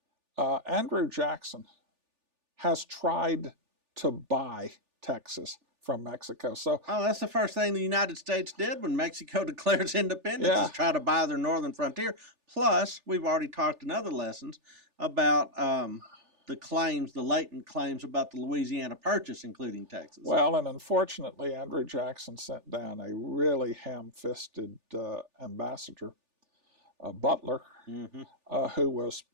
Andrew Jackson has tried to buy Texas from Mexico. So, that's the first thing the United States did when Mexico declares independence is try to buy their northern frontier. Plus, we've already talked in other lessons about the claims, the latent claims about the Louisiana Purchase, including Texas. Well, and unfortunately, Andrew Jackson sent down a really ham-fisted ambassador, Butler, who was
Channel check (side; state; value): left; late; 3.4 ms